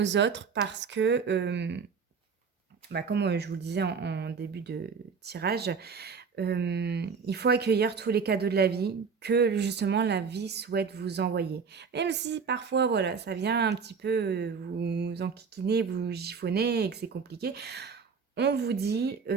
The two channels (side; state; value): left; quieter; 5.7 dB